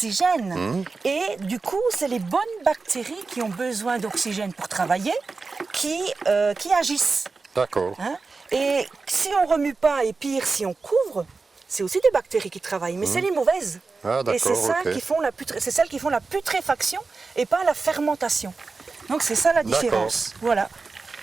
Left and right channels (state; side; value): quieter; left; 4.1 dB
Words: Et du coup, c'est les bonnes bactéries qui ont besoin d'oxygène pour travailler qui agissent. D'accord. Et si on ne remue pas, et pire, si on couvre, c'est aussi des bactéries qui travaillent, mais c'est les mauvaises. Et c'est celles qui font la putréfaction et pas la fermentation. Donc c'est ça la différence. Voilà.